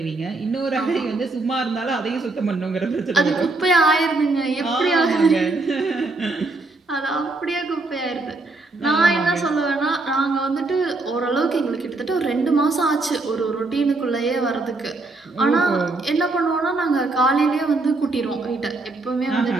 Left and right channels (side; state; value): left; quieter; 3.3 dB